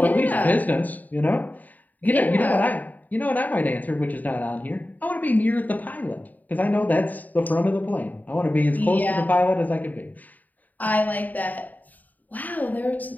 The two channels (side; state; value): right; late; 0.081 ms